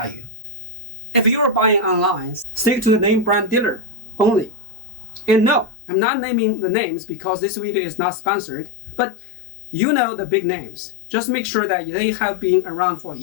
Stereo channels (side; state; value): right; drops out; at 5.7 s